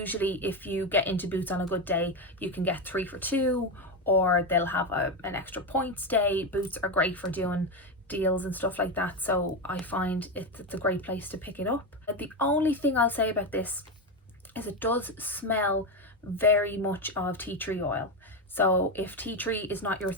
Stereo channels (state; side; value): normal; both; correlation 0.12